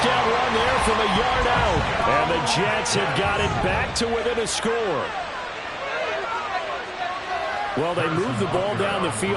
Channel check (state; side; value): identical; both; correlation 1.00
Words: run there from a yard out. And the Jets have got it back to within a score. Well, they move the ball down the